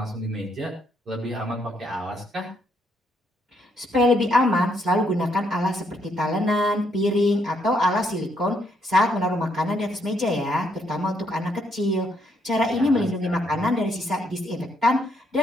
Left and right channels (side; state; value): both; normal; correlation 0.73